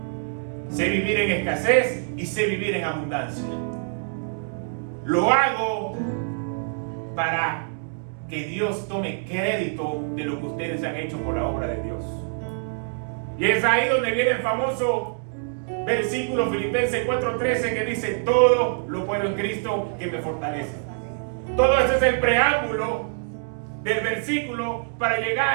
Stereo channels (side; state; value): left; silent; digital silence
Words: Sé vivir en escasez y sé vivir en abundancia. Lo hago para que Dios tome crédito de lo que ustedes han hecho por la obra de Dios. Y es ahí donde viene el famoso versículo Filipenses 4:13 que dice: todo lo puedo en Cristo que me fortalece. Todo eso es el preámbulo del versículo para